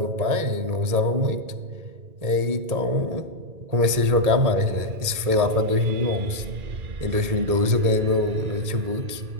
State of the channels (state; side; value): late; left; 1.8 ms